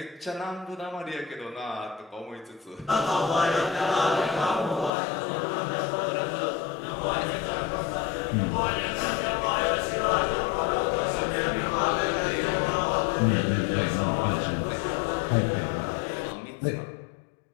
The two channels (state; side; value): drops out; right; at 4.9 s